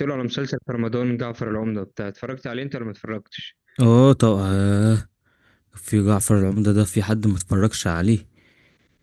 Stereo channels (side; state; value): both; identical; correlation 1.00